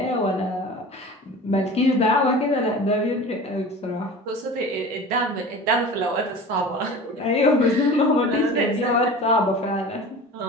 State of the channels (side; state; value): both; normal; correlation 0.37